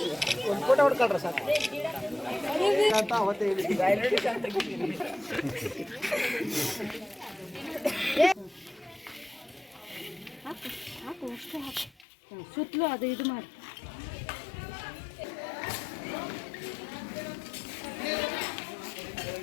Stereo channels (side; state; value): right; drops out; at 12.1 s